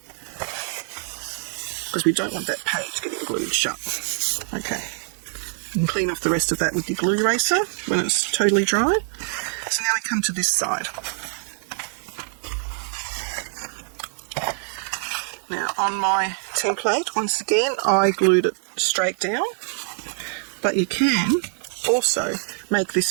because we don't want that page getting glued shut. Okay. And clean off the rest of that with your glue eraser when it's totally dry. So now we come to this side. Now on my template, once again, I glued it straight down, but you can also make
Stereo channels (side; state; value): left; silent; digital silence